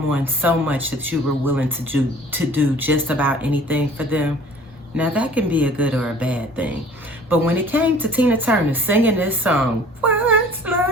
so much that you were willing to do just about anything for them? Now that can be a good or a bad thing. But when it came to Tina Turner singing this song, what's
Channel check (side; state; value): both; normal; correlation 0.50